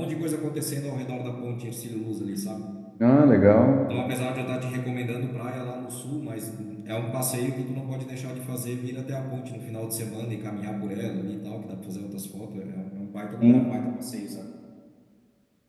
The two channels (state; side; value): identical; both; correlation 1.00